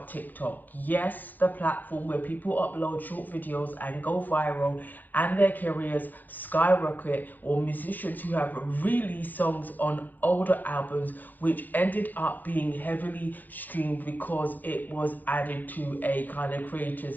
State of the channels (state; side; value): late; right; 0.085 ms